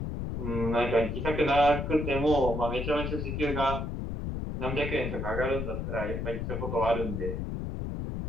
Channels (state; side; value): noise; left; rumble, 3 dB below the sound